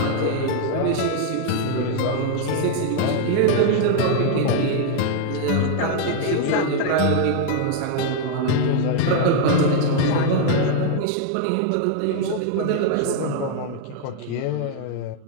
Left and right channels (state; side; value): different; both; correlation 0.00